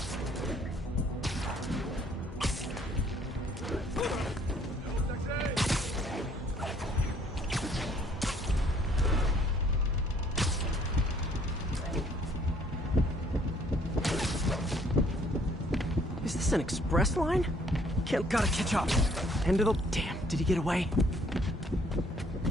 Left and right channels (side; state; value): both; normal; correlation 0.62